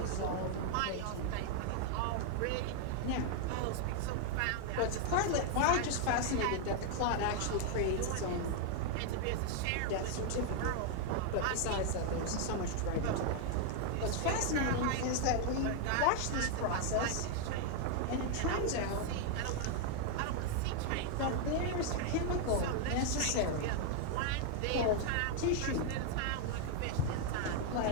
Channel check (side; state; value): both; different; correlation 0.00